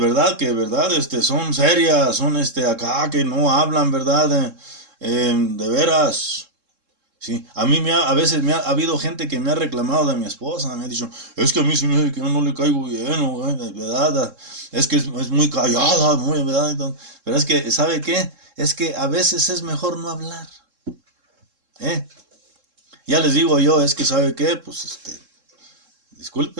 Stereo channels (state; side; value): late; left; 3.7 ms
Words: Que, ¿verdad? Son serias, son acá que no hablan, ¿verdad? De veras. Sí, a mí a veces ha habido gente que me ha reclamado de mi esposa, me ha dicho, es que a mí se me hace que yo no le caigo bien, ¿verdad? Es que es muy callada, muy, ¿verdad? Entonces, pero es que, ¿sabe qué? Es que a veces es mejor no hablar, ¿eh? Ya les digo yo, es que, ¿sabe qué? Pues,